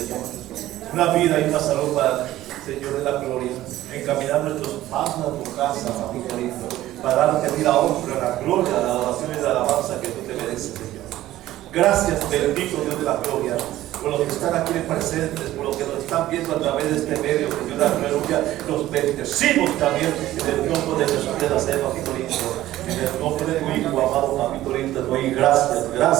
Una vida y una salud para, Señor, de la gloria. Encaminar nuestros pasos a tu casa, papito lindo, para darte a ti la honra, la gloria, la adoración y la alabanza que tú te mereces, Señor. Gracias, bendito Dios de la gloria, por los que están aquí presentes, por los que nos están viendo a través de este medio, Señor, aleluya. Los bendecimos también en el nombre de Jesús de Nazaret, papito lindo. En el nombre de tu Hijo, amado papito lindo, te doy gracias,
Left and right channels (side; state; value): left; quieter; 14.7 dB